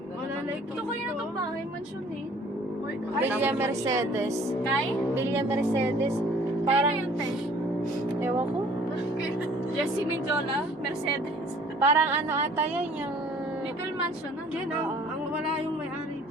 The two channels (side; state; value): both; normal; correlation 0.54